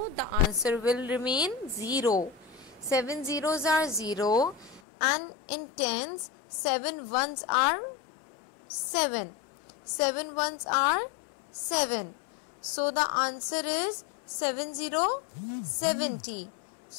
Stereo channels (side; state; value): right; drops out; at 4.8 s